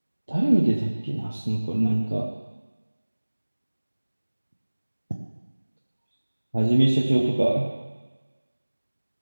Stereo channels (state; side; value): inverted; both; correlation -1.00